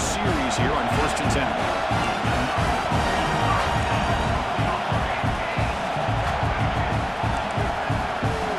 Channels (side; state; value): both; identical; correlation 1.00